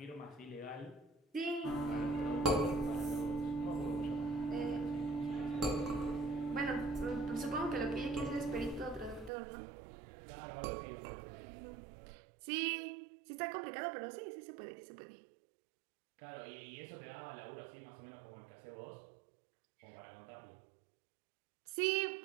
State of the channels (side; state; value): left; drops out; at 9.3 s